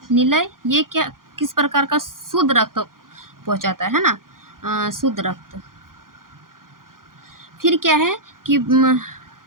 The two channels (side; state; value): left; late; 0.91 ms